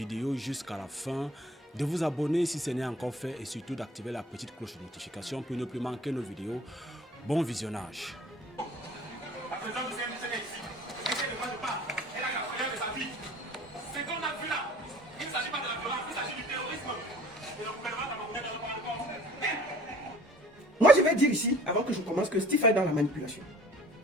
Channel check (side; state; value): both; normal; correlation 0.50